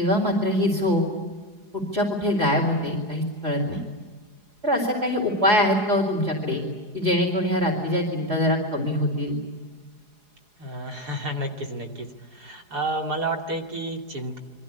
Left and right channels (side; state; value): left; late; 4.8 ms